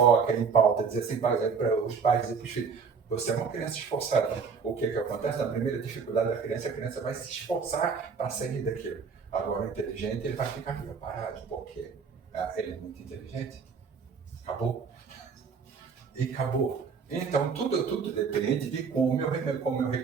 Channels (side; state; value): left; quieter; 5.7 dB